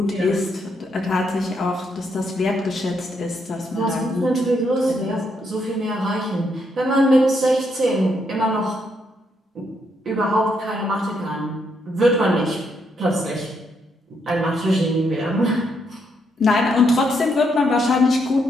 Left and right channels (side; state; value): both; normal; correlation 0.76